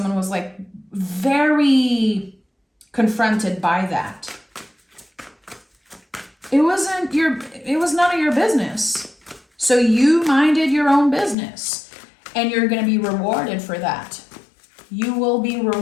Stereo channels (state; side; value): drops out; right; at 11.4 s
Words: was like very confronted by that. It was none of your business. So you minded your own business and you're going to be rewarded for that. You will be